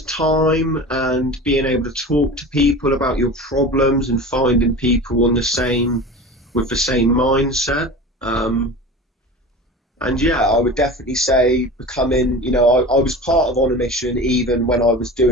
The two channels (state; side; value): normal; both; correlation 0.33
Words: time and being able to talk to people about your problems and finding people with the same mindset. And yeah, I would definitely say becoming, I was part of On a Mission even when I was